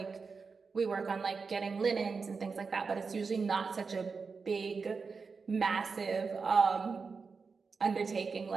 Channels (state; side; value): quieter; left; 4.9 dB